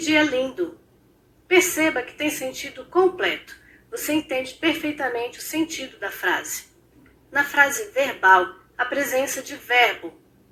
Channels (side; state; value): both; identical; correlation 1.00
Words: lindo! Perceba que tem sentido completo. Você entende perfeitamente o sentido da frase. Na frase verbal, a presença de verbo.